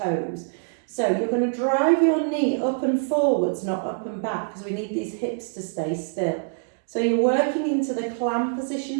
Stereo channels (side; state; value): left; silent; digital silence